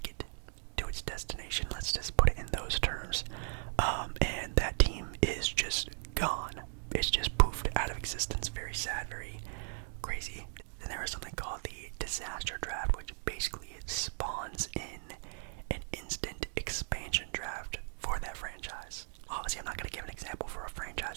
it to its destination. Let's just put it in those terms. And that team is just gone. It's just poofed out of existence. Very sad, very crazy. Then there is something called the disaster draft, which basically spawns in an instant expansion draft for that franchise. Obviously, I'm not going to give an example for a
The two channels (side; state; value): left; silent; 53 dB below the other